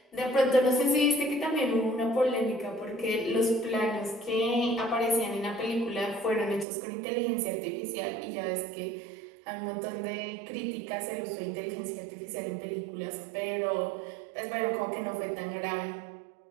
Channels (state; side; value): drops out; left; at 6.7 s